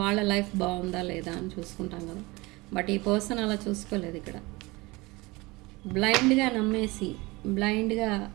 లైఫ్ బాగుందా లేదా అని చూసుకుంటాం కదా. బట్ ఈ పర్సన్ అలా చూసుకోలేదు. ఇక్కడ బ్లైండ్గా నమ్మేసి బ్లైండ్గా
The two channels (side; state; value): left; quieter; 23.2 dB